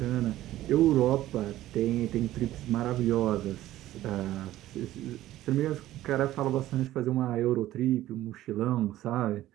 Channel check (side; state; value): left; quieter; 14.6 dB